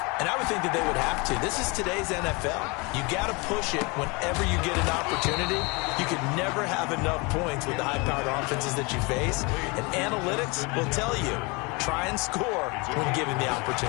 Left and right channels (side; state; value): right; quieter; 28.1 dB